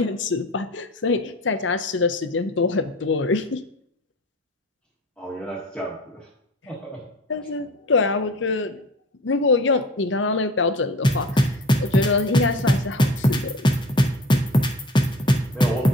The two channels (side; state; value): both; normal; correlation 0.40